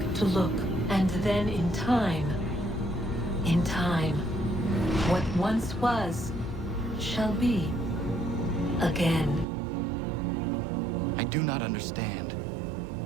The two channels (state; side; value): drops out; left; at 9.5 s